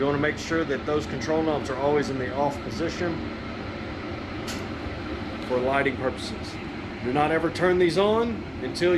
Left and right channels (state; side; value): identical; both; correlation 1.00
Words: want to make sure that those control knobs are always in the off position for lighting purposes. Do not ever turn these on until